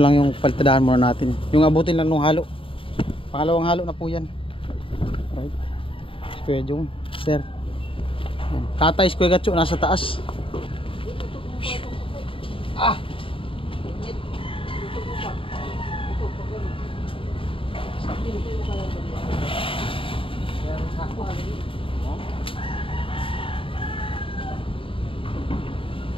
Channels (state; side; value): late; right; 0.26 ms